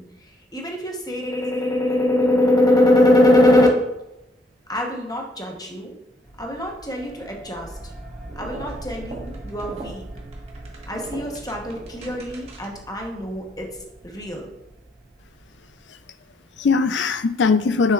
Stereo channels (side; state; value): both; normal; correlation 0.70